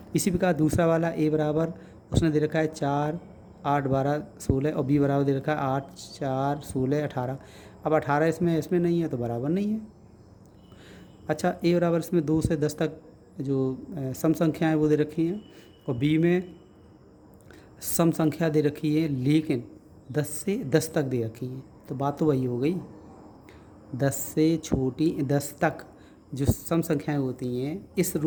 इसी प्रकार दूसरा वाला ए बराबर उसने दे रखा है 4, 8, 12, 16 और बी बराबर दे रखा है 8, 4, 16, 18। अब 18 इसमें नहीं है तो बराबर नहीं है। अच्छा, ए बराबर इसमें 2 से 10 तक जो सम संख्याएँ वो दे रखी हैं, और बी में सम संख्या दे रखी है लेकिन 10 से 10 तक दे रखी है, तो बात तो वही हो गई। 10 से छोटी 10 तक जो सम संख्याएं होती हैं, इस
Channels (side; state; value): both; identical; correlation 1.00